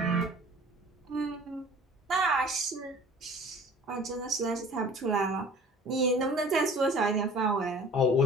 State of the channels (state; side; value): normal; both; correlation 0.47